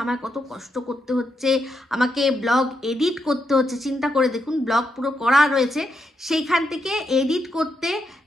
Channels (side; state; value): both; normal; correlation 0.82